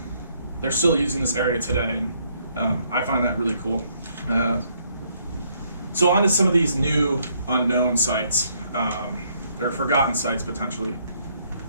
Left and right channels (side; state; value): both; inverted; correlation -0.70